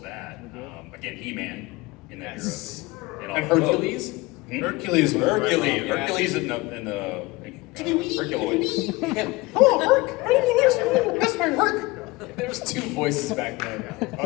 that, again, He-Man in that Yes. era. And Hercules. Hercules. Hercules. Yeah. Hercules in the Herculoids. Hello, Herc. That's my Herc. There was two voices back then. I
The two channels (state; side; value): quieter; right; 22.3 dB